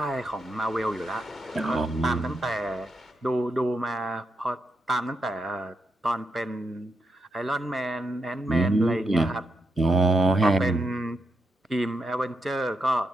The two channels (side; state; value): both; normal; correlation 0.83